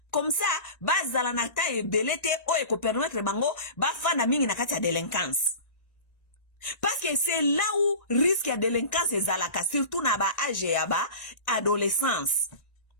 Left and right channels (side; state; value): right; late; 1.9 ms